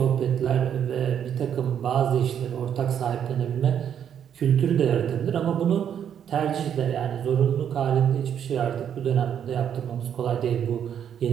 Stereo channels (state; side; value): quieter; left; 8.9 dB